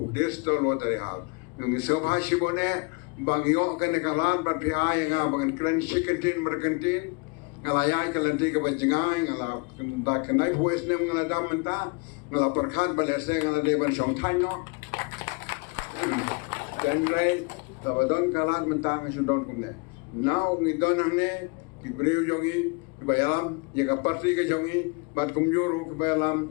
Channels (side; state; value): right; quieter; 31.0 dB